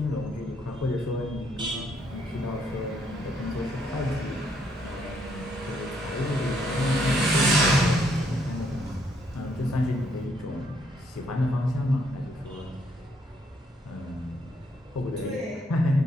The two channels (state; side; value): normal; both; correlation 0.71